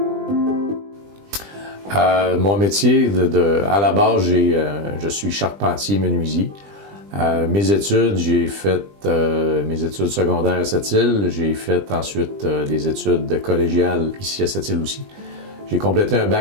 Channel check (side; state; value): left; late; 20 ms